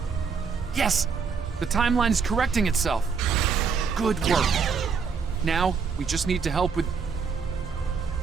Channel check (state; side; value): quieter; left; 5.7 dB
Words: Yes! The timeline is correcting itself. Good work. Now, we just need to help with...